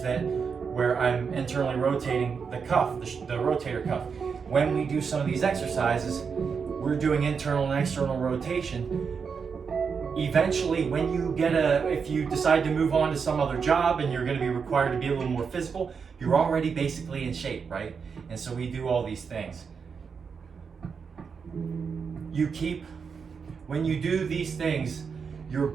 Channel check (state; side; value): quieter; left; 5.9 dB